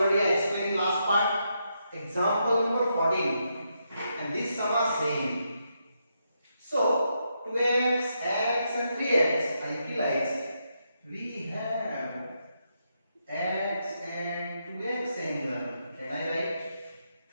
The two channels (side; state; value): both; inverted; correlation -0.81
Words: I explained in last part. Example number 14. And this sum are same. So 2x, x and 3x I utilize. We have x and 2x angle. Can I write